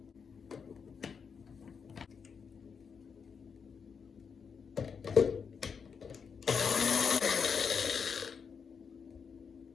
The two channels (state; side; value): quieter; right; 6.2 dB